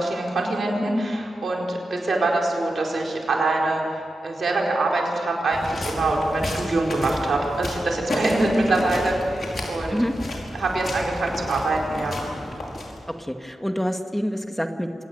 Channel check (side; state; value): both; normal; correlation 0.90